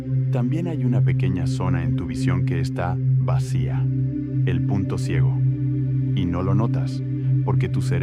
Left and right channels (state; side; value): identical; both; correlation 1.00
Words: También hay una pequeña zona en tu visión que está vacía, el punto ciego. Y no lo notas, porque tu